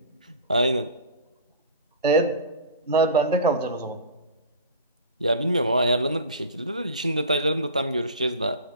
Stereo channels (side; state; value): both; inverted; correlation -0.35